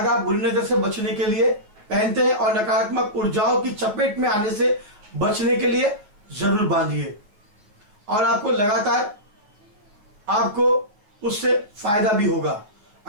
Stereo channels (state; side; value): late; left; 9.5 ms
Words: बुरी नजर से बचने के लिए पहनते हैं और नकारात्मक ऊर्जाओं की चपेट में आने से बचने के लिए जरूर बांधिए और आपको लगातार आपको उससे फायदा भी होगा।